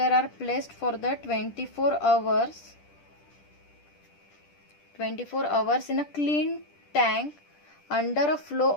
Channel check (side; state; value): right; late; 10 ms